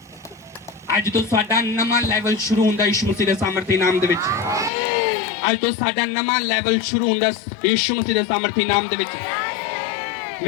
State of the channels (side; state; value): right; drops out; at 4.7 s